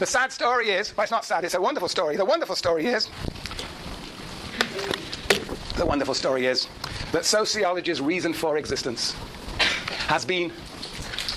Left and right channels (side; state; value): both; identical; correlation 1.00